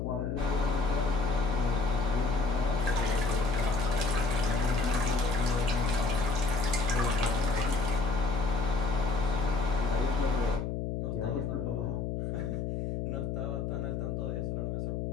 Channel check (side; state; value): left; noise; hum, 2 dB below the sound